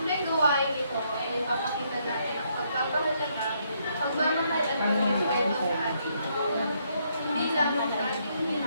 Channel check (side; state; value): both; inverted; correlation -0.73